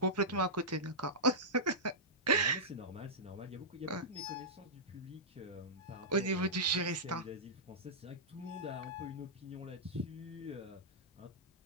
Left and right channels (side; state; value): both; normal; correlation -0.12